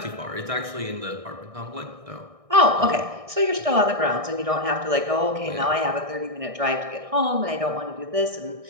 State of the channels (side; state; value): left; late; 1.6 ms